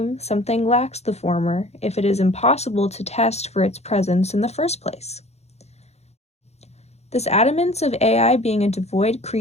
something lacks the former if it is impossible to test for its presence in the first place? This adamance of AI being a devoid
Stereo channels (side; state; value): right; late; 0.31 ms